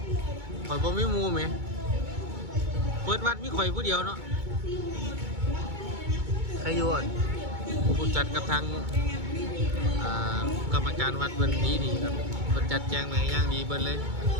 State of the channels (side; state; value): left; late; 2.2 ms